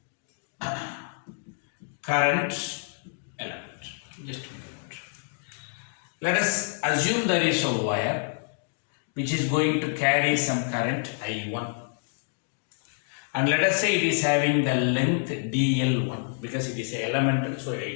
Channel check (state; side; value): silent; right; 60 dB below the other